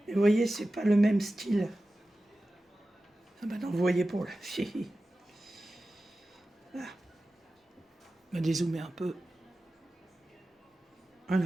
Et vous voyez, c'est pas le même style. Ah bah non, vous voyez pour la fille. Là. On va dézoomer un peu.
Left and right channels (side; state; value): both; normal; correlation 0.95